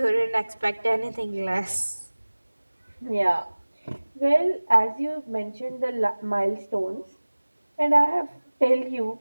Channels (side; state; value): both; inverted; correlation -1.00